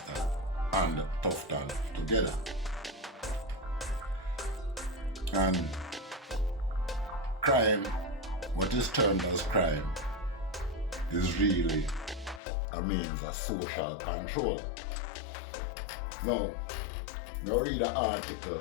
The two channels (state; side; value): drops out; right; at 12.4 s